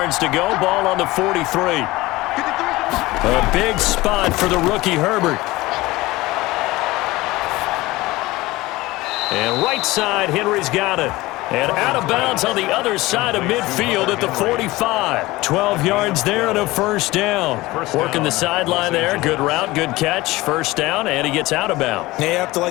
to go, ball on the 43. A big spot for the rookie Herbert. And right side, Henry's got it. And out of bounds on the other side of midfield at the 45. 12 yards there and a 1st down. Working the sideline there. Good route, good catch. 1st down, and he gets out of bounds. Yeah, you have to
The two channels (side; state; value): right; quieter; 19.6 dB